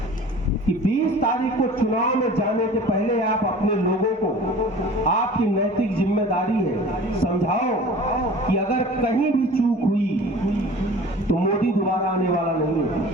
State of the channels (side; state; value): both; normal; correlation 0.43